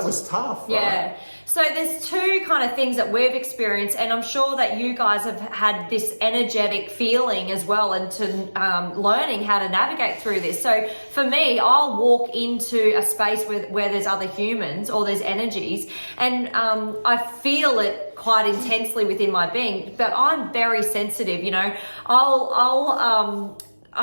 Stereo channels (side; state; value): both; inverted; correlation -1.00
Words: was tough, right? Yeah. So there's two kind of things that we've experienced, and I'm sure that you guys have had this energetic feeling as well, and to learning how to navigate through this. So for me, I'll walk into a space where there's other humans or there's energies, and I feel it quite intensely within my being, but I'm very sensitive, you know.